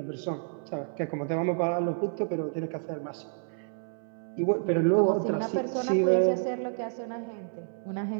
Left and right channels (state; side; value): silent; left; 57 dB below the other